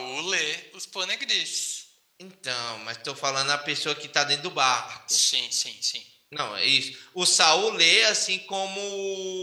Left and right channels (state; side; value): identical; both; correlation 1.00